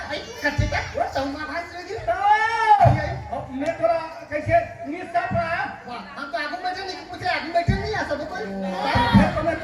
आई कच्चे का वो चौमा भाज लगी तो अब मैं थोड़ा कैसे निस्साफ रहा, वाह हम तो आगू बैठे नहीं पूछ रहे आगू बैठे नहीं आ सब कोई फिर तो मैं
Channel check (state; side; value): identical; both; correlation 1.00